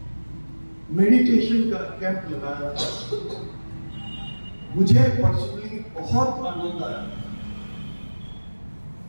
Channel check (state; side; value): inverted; both; correlation -1.00